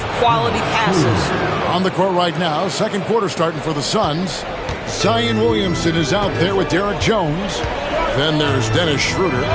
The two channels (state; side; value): identical; both; correlation 1.00